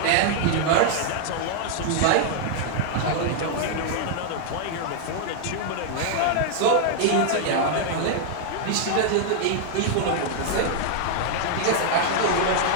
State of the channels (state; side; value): different; both; correlation 0.00